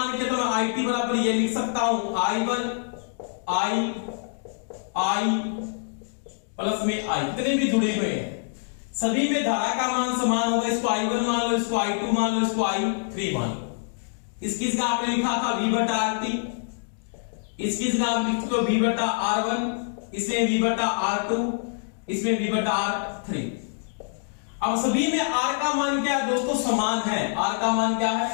के तो मैं IT बराबर ये लिख सकता हूं I1 I प्लस में I, कितने भी जुड़े हुए हैं सभी में धारा का मान समान होगा। इसको I1 मान लो, इसको I2 मान लो, इसको I3 मान लो। इसकी जगह आपने लिखा था V/RT, इसकी जगह आप लिख दो V/R1, इसमें V/R2, इसमें V/R3। अब सभी में R का मान क्या है दोस्तों? समान है। R का मान क्या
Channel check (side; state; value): right; silent; digital silence